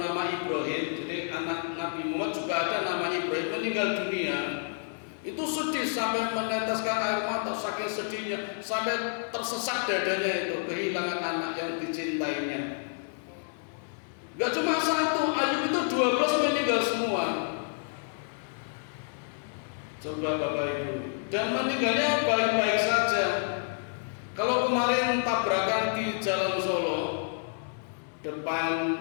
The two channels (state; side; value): silent; right; digital silence